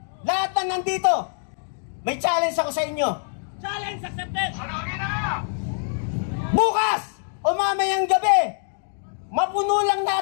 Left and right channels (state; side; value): silent; right; digital silence